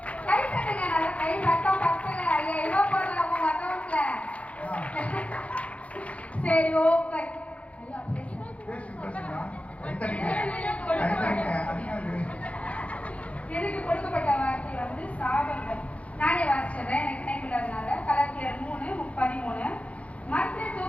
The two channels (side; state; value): right; late; 0.065 ms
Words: கை தட்டுங்க, நல்லா கை சத்தம் பத்தல. ஐயோ போடல உங்க அக்கௌண்ட்ல. சரி ஓகே. எனக்கு கொடுக்கப்பட்ட வார்த்தை வந்து சாபங்கள். நானே வாசிச்சிடுறேன், எனக்கு நினைக்கின்றதுனால. கலாத்தியர் 3:13. மரத்தில்